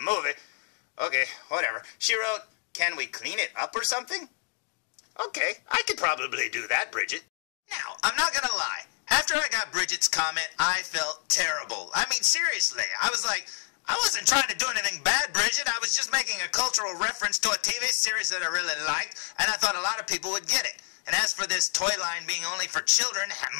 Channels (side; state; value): right; silent; digital silence